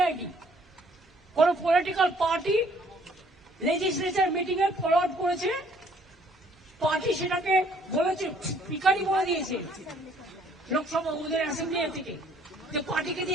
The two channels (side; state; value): both; normal; correlation 0.61